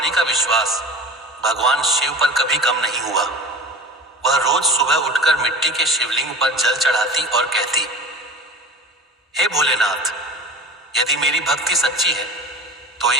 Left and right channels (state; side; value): normal; both; correlation 0.36